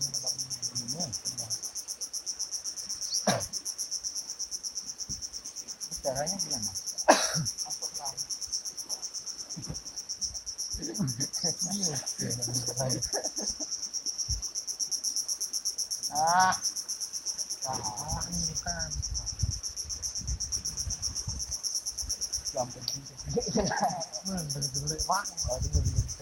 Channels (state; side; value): identical; both; correlation 1.00